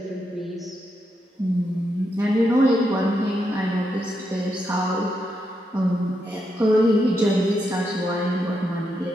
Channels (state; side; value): normal; both; correlation 0.82